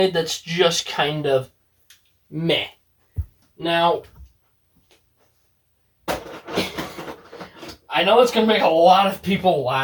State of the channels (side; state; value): both; identical; correlation 1.00